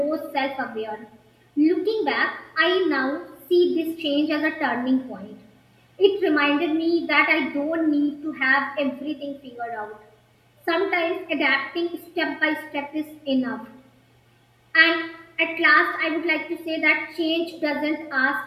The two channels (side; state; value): both; identical; correlation 1.00